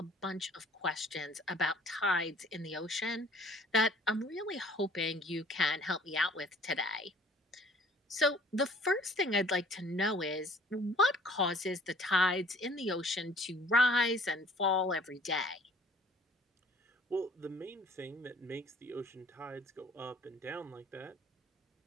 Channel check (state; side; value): normal; both; correlation 0.54